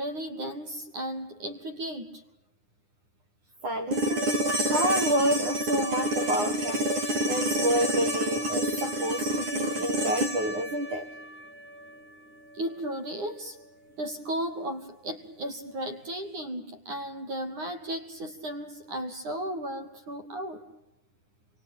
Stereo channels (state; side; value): late; left; 9.8 ms